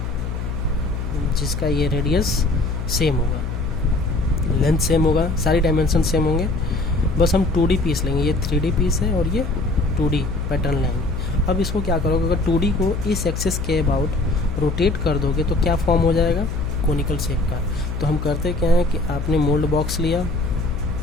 जिसका ये रेडियस सेम होगा, लेंथ सेम होगा, सारी डायमेंशन सेम होंगे, बस हम 2D पीस लेंगे। ये 3D पीस है और ये 2D पैटर्न लेंगे। अब इसको क्या करोगे, अगर 2D को इस एक्सिस के अबाउट रोटेट कर दोगे तो क्या फॉर्म हो जाएगा, कोनिकल शेप का। तो हम करते क्या है कि आपने मोल्ड बॉक्स लिया,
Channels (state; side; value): noise; left; hum, 4 dB below the sound